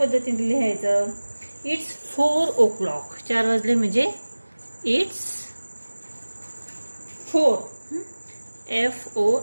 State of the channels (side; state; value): both; inverted; correlation -1.00